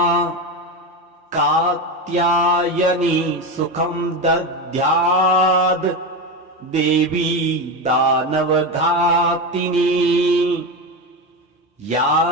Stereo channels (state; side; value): normal; both; correlation 0.18